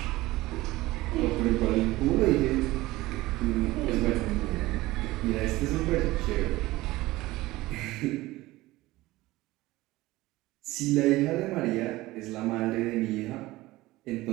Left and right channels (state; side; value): quieter; left; 18.7 dB